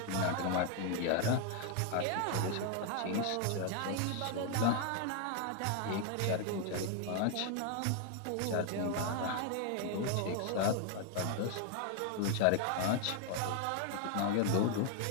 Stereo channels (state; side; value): different; both; correlation 0.00